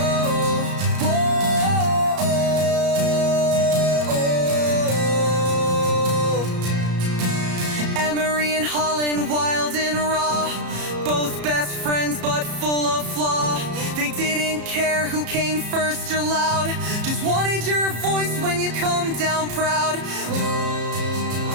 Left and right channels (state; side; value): late; left; 34 ms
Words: whoa, oh. Emery and Holland, wild and raw, both best friends but full of flaw. They didn't care who came first or loud, just wanted your voice when you come down proud.